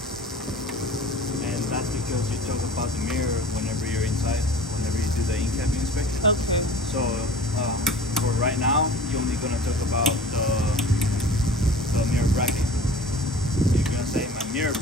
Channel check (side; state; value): both; normal; correlation 0.42